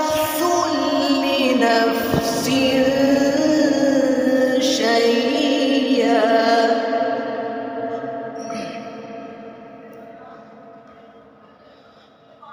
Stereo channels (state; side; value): identical; both; correlation 1.00